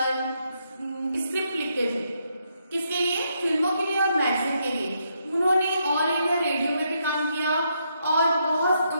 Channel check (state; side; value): inverted; both; correlation -0.77